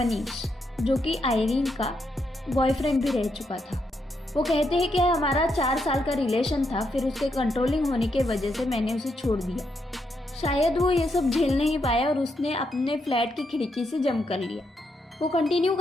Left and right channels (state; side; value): normal; both; correlation 0.80